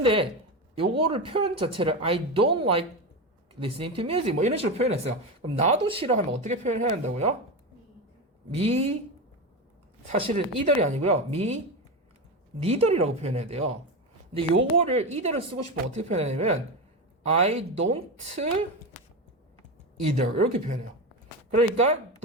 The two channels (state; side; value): normal; both; correlation 0.18